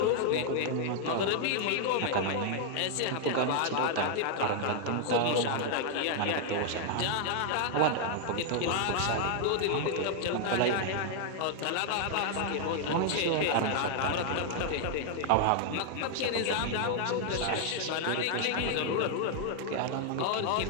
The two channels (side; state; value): both; different; correlation 0.00